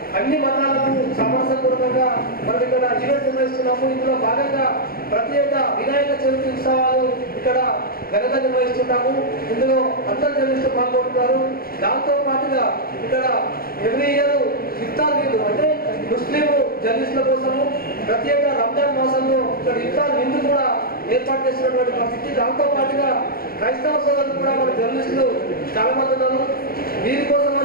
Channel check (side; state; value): right; late; 0.43 ms